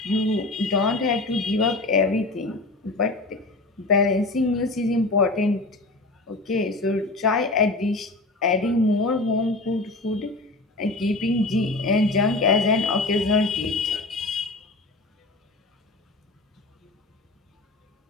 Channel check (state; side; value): quieter; right; 3.0 dB